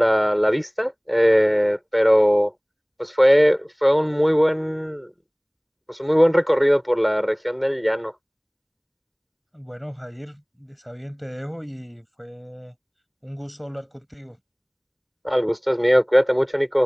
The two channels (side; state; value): both; identical; correlation 1.00